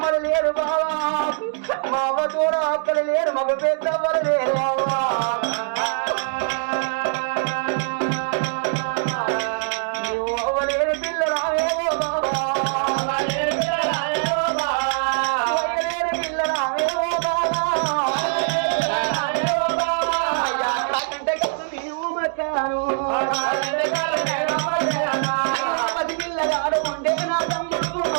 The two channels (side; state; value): left; silent; digital silence